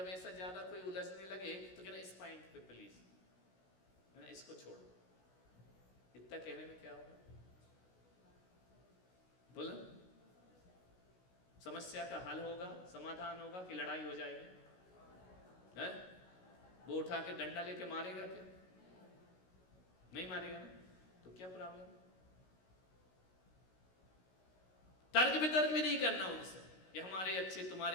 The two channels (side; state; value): right; late; 16 ms